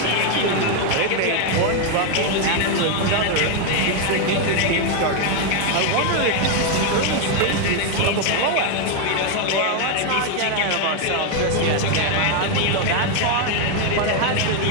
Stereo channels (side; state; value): both; different; correlation 0.01